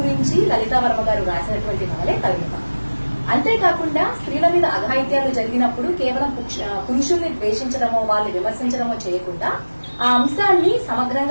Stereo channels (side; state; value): both; inverted; correlation -1.00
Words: గురించి లలితా వర్మ గారు రాసినటువంటి నవలే తరుణిమ. అంతేకాకుండా స్త్రీల మీద అఘాయిత్యాలు జరిగినప్పుడు కేవలం పురుషుల్ని ద్వేషించడమో, వాళ్ళు విమర్శించడమో చేయకుండా ఆ అంశాన్ని